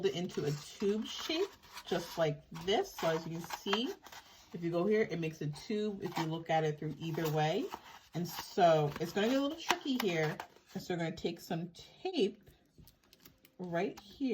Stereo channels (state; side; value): identical; both; correlation 1.00